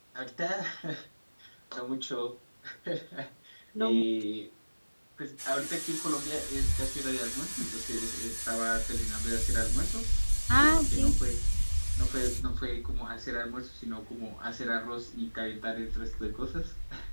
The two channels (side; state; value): both; inverted; correlation -1.00